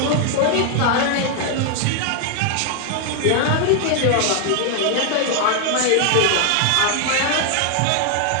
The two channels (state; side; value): different; both; correlation 0.00